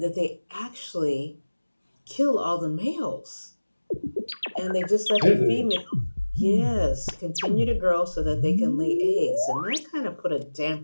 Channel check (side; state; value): both; inverted; correlation -1.00